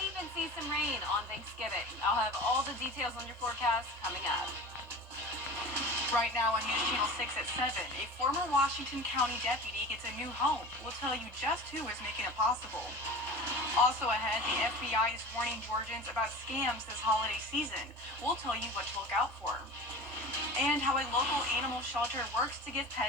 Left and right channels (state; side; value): normal; both; correlation 0.36